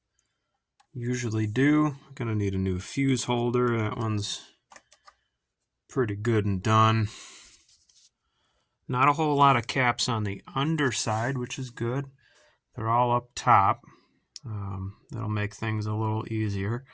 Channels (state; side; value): identical; both; correlation 1.00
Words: Usually do. Going to need a new fuse holder. That one's pretty good and done. Not a whole lot of caps on the underside, which is good. They're all up top. That'll make things a little easier.